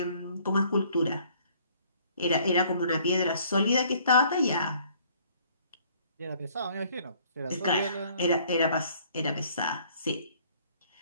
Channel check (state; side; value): inverted; both; correlation -0.59